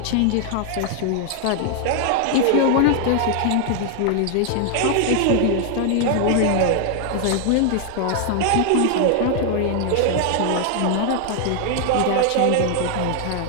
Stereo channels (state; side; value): different; both; correlation 0.00